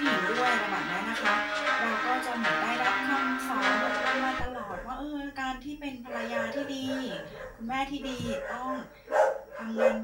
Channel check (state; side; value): identical; both; correlation 1.00